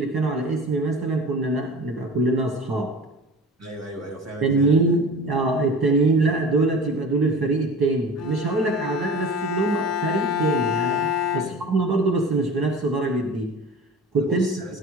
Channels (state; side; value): normal; both; correlation 0.37